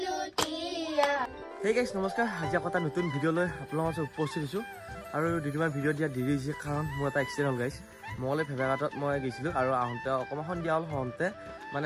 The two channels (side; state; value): both; identical; correlation 1.00